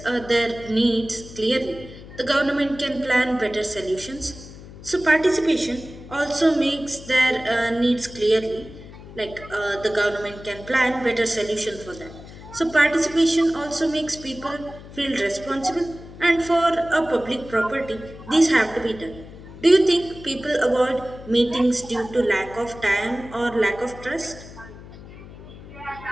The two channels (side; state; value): left; noise; hum, 16 dB below the sound